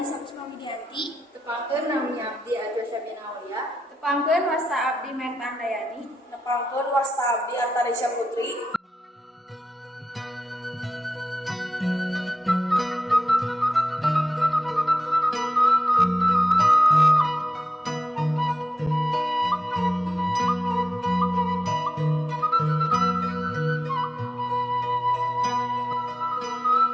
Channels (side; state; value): both; normal; correlation 0.91